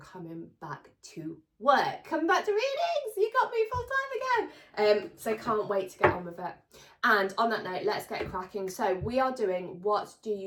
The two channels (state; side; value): identical; both; correlation 1.00